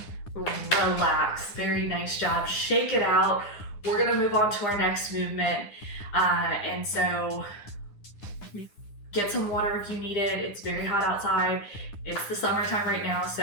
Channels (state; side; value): late; right; 9.9 ms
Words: Relax. Very nice job. Shake it out. We're gonna move on to our next movement. And so get some water if you need it. It's very hot outside. It's the summertime right now,